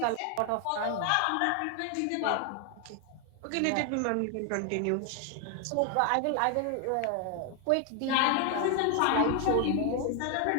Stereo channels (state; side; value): different; both; correlation 0.00